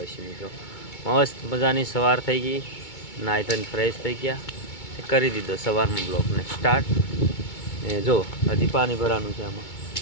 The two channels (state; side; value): late; right; 2.2 ms